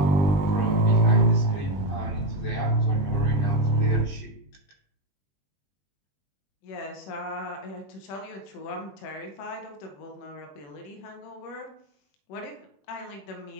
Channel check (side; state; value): right; late; 20 ms